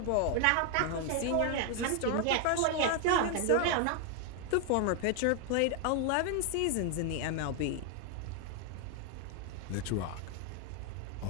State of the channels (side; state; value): both; different; correlation 0.00